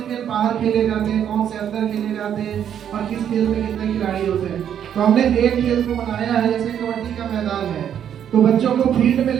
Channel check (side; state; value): left; quieter; 9.3 dB